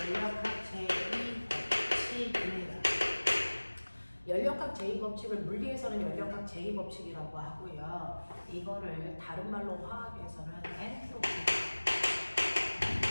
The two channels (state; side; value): inverted; both; correlation -1.00